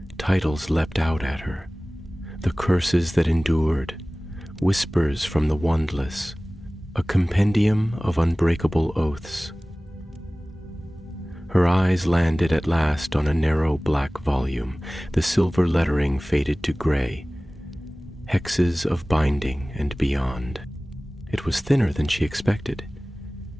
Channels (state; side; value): normal; both; correlation 0.98